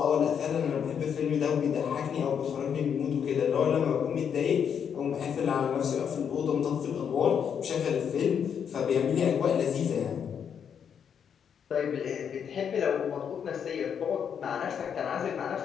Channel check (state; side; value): quieter; right; 7.7 dB